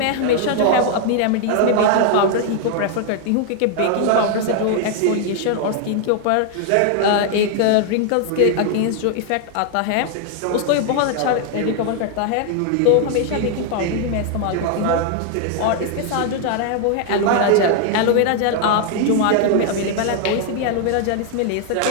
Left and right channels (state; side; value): different; both; correlation 0.00